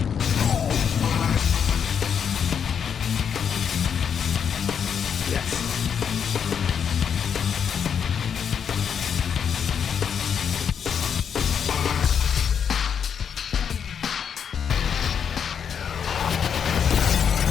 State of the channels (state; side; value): quieter; right; 7.5 dB